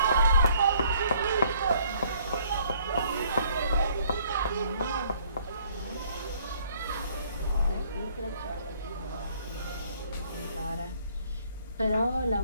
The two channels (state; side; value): inverted; both; correlation -0.62